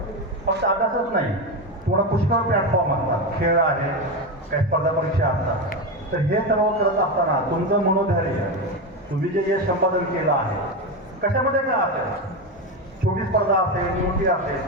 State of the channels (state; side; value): normal; both; correlation 0.15